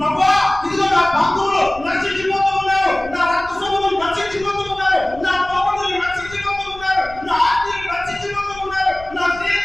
ఇదిగో నా బంధువులు నశించిపోతూ ఉన్నారు, నా రక్త సంబంధులు నశించిపోతూ ఉన్నారు, నా పౌరులు నశించిపోతూ ఉన్నారు, నా ఆత్మీయులు నశించిపోతూ ఉన్నారు, నా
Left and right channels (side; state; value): left; noise; rumble, 18 dB below the sound